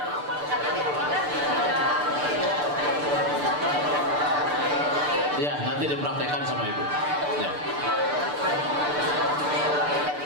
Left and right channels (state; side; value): late; left; 6.8 ms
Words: Ya, nanti dipraktekkan sama Ibu. Ya.